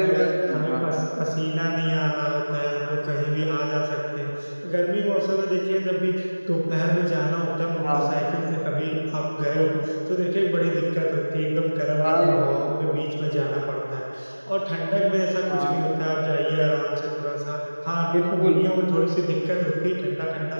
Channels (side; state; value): both; inverted; correlation -1.00